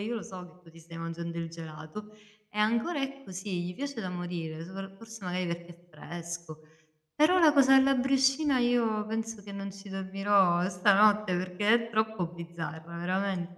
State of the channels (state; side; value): identical; both; correlation 1.00